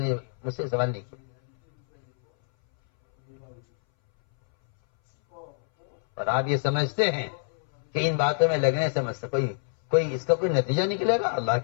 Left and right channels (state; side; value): silent; right; 60 dB below the other